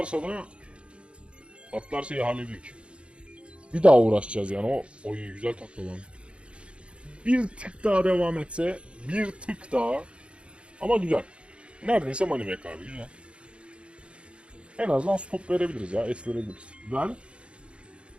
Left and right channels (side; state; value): left; late; 0.058 ms